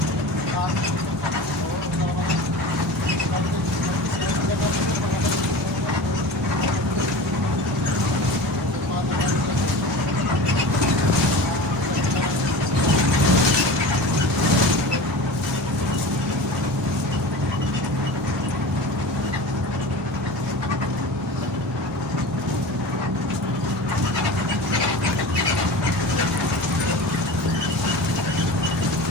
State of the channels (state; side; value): normal; both; correlation 0.33